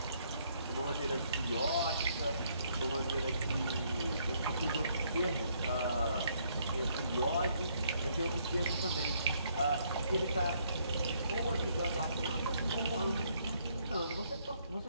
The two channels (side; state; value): both; inverted; correlation -0.69